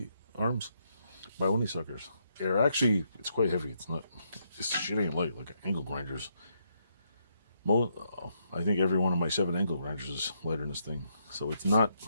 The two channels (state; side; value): inverted; both; correlation -0.77